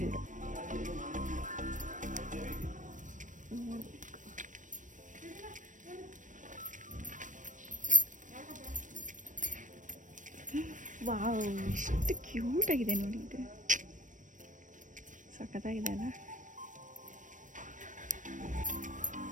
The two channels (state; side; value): late; left; 0.37 ms